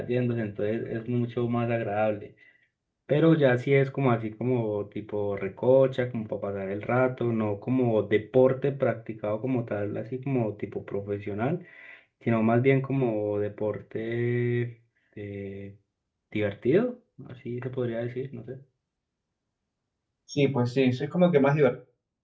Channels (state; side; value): identical; both; correlation 1.00